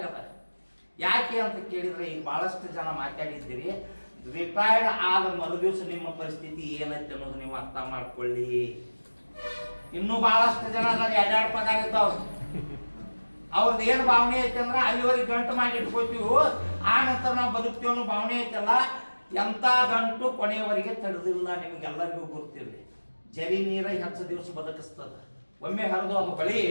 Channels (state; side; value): inverted; both; correlation -1.00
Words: ಅಲ್ಲ. ಯಾಕೆ ಅಂತ ಕೇಳಿದ್ರೆ ಈಗ ಬಹಳಷ್ಟು ಜನ ಮಾತಾಡಿದ್ದೀರಿ, ರಿಟೈರ್ಡ್ ಆದ ಮರುದಿವಸ ನಿಮ್ಮ ಪರಿಸ್ಥಿತಿ ಏನೈತೆ ಅನ್ನೋದು ನೀವು ಅರ್ಥ ಮಾಡ್ಕೊಳ್ಳಿ. ಇನ್ನೂ ಬಹಳಷ್ಟು ಜನ ಎರಡು ಪಗಾರ ಇದ್ದಾವ, ಅವ್ರದ್ದು ಏನು ಭಾವನೆ ಐತೆ ಅಂದ್ರೆ ಅಲ್ಲಿವರೆಗೆ ಗಂಟು ಮಾಡಿ ಇಟ್ಕೋತೀವಿ, ಆ ನಂತರ ನಾವು ಬದುಕ್ತೀವಿ ಅನ್ನೋ ಭಾವನೆ ಐತಲ್ಲ, ಎಂಥ ಗಂಟು ಕೊನೆಯವರೆಗೆ ತಡೆದಿಲ್ಲ. ನಿಮಗೆಲ್ಲರಿಗೂ ಗೊತ್ತಿರಲಿ, ಜರಿ ನೀರ ಹೆಚ್ಚು ದಿವಸ ಬದುಕಿಸ್ತದ, ಒಮ್ಮೆ ಹರಿದು ಅದು ಬಳಿ